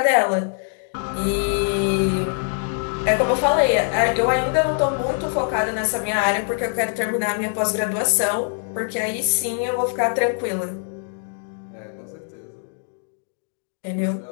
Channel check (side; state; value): right; silent; digital silence